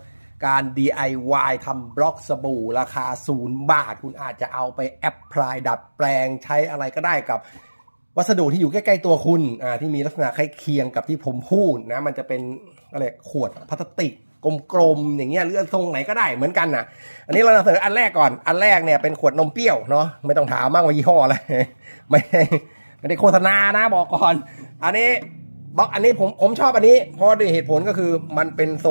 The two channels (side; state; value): both; inverted; correlation -1.00